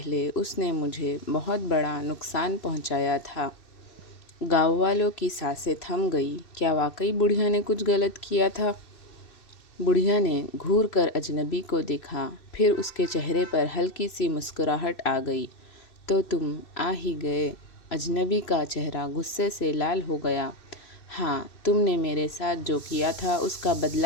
उसने मुझे बहुत बड़ा नुकसान पहुँचाया था। गाँव वालों की सांसें थम गई। क्या वाकई बुढ़िया ने कुछ गलत किया था? बुढ़िया ने घूर कर अजनबी को देखा, फिर उसके चेहरे पर हल्की सी मुस्कुराहट आ गई। तो तुम आ ही गए। अजनबी का चेहरा गुस्से से लाल हो गया। हाँ, तुमने मेरे साथ जो किया था उसका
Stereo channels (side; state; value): right; late; 2.7 ms